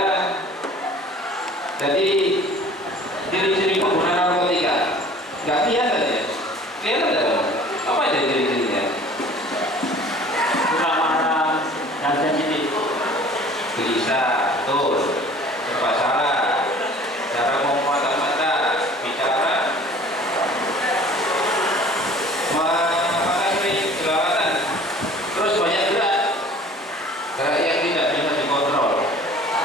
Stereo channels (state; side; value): normal; both; correlation 0.48